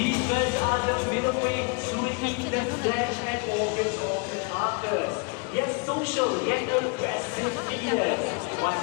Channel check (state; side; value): quieter; right; 31.7 dB